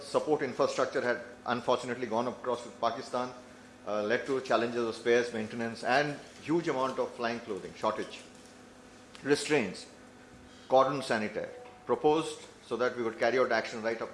support infrastructure had unfortunately gone across with Pakistan, led to challenges of spares, maintenance, and huge amount of flying clothing, shortage. Restraints, cordon sanitaire, proposed so that we would carry out action right up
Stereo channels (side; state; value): both; identical; correlation 1.00